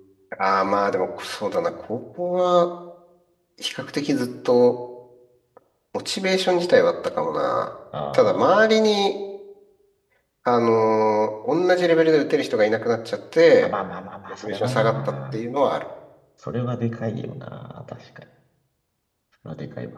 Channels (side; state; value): both; identical; correlation 1.00